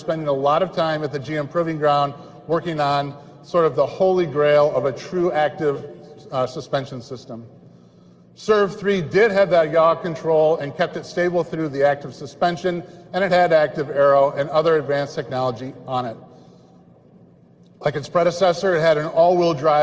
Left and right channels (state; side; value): identical; both; correlation 1.00